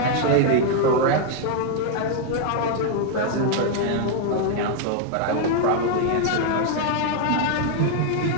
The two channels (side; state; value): both; different; correlation 0.00